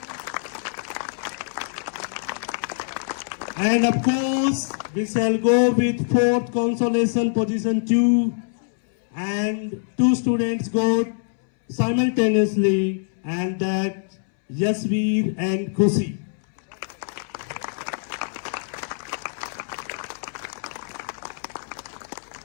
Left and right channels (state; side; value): silent; right; 62 dB below the other